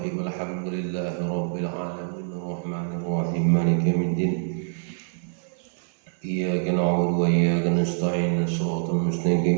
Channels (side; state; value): left; silent; 57 dB below the other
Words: Alhamdulillahi rabbil alamin arrahmanir rahim maliki yaumiddin. Iyyaka na'budu wa iyyaka nasta'in shiratal